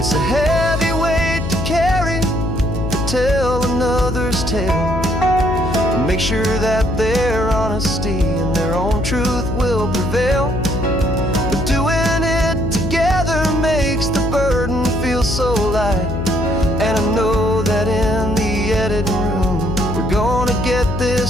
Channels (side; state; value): left; noise; hum, 4 dB below the sound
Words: a heavy weight to carry, to tell another's tale, and make sure that their honesty and their own truth will prevail. But doing it together makes the burden feel so light. And I know that in the editing room we're gonna get